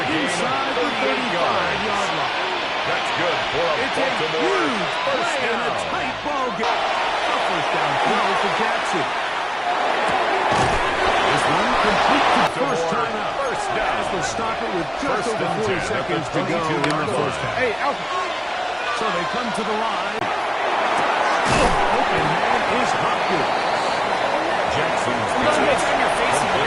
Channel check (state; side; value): identical; both; correlation 1.00